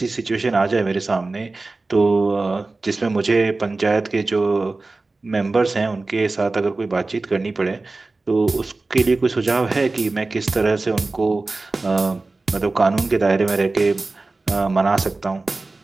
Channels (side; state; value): left; quieter; 3.4 dB